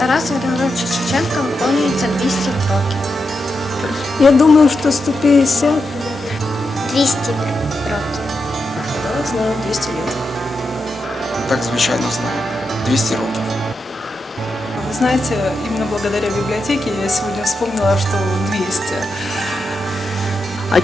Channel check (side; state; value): both; normal; correlation 0.86